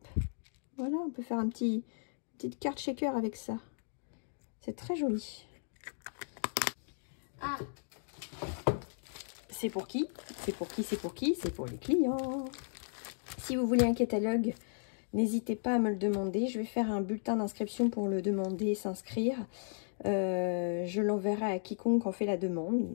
Voilà, on peut faire petite carte shaker avec ça. C'est très joli. Ah, c'est pour qui? C'est pour qui? C'est pour qui? C'est pour les clients. Si vous voulez un catalogue n'hésitez pas à me le demander. Je vais faire un bulletin d'inscription pour le demander et s'inscrire. Je l'enverrai à quiconque en fait la demande.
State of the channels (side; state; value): right; silent; digital silence